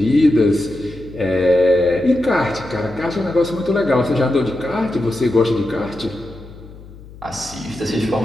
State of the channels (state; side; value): noise; left; hum, 18 dB below the sound